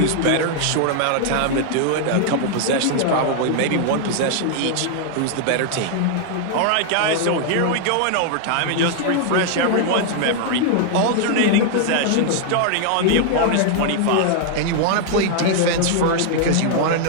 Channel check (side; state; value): both; different; correlation 0.00